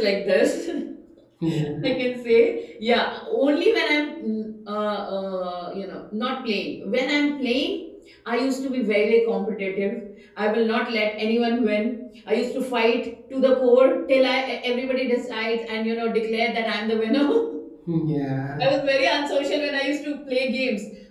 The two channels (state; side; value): identical; both; correlation 1.00